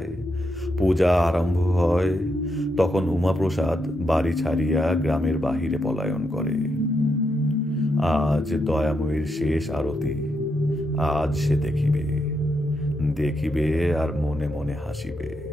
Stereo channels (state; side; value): normal; both; correlation 0.82